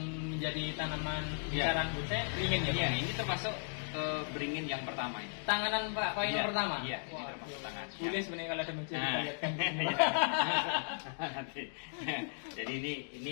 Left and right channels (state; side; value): silent; right; digital silence